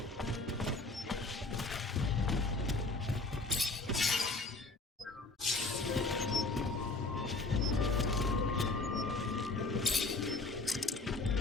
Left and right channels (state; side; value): quieter; right; 3.3 dB